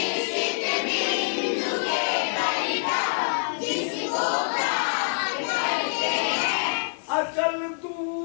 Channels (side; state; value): right; silent; 61 dB below the other